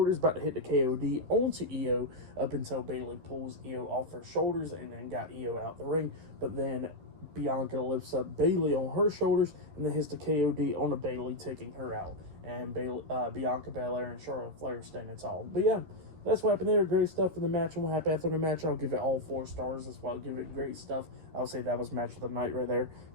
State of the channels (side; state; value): left; late; 13 ms